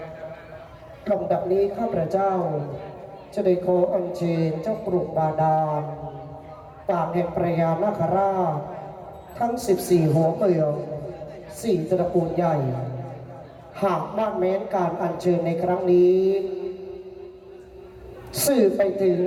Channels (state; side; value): identical; both; correlation 1.00